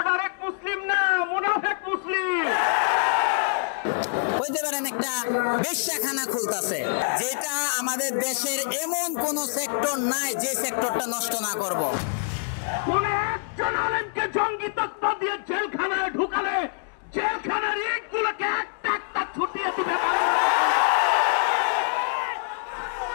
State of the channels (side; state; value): right; silent; digital silence